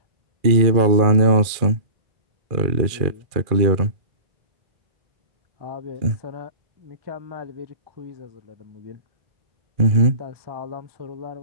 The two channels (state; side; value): late; left; 2.4 ms